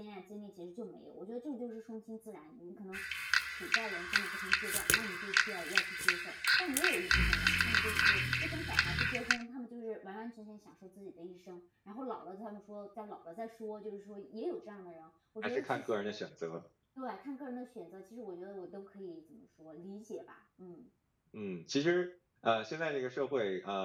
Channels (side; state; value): both; identical; correlation 1.00